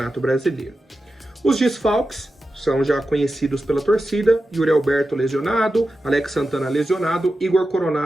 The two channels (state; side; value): normal; both; correlation 0.91